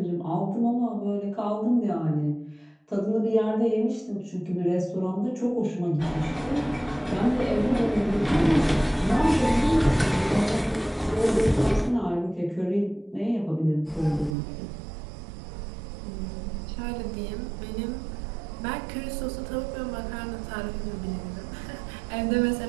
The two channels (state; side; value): drops out; left; at 14.4 s